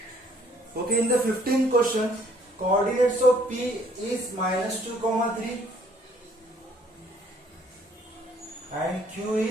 Okay, in the 15th question, coordinates of P is minus 2 comma 3 and Q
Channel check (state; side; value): normal; both; correlation 0.62